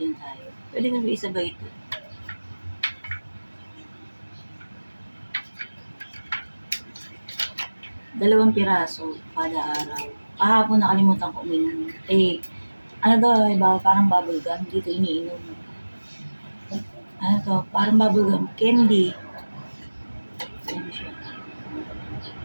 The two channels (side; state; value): both; inverted; correlation -1.00